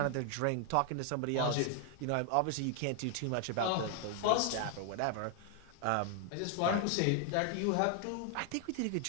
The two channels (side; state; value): both; different; correlation 0.00